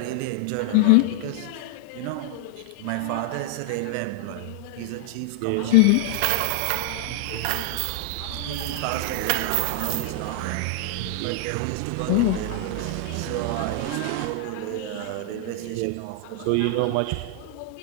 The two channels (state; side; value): different; both; correlation -0.01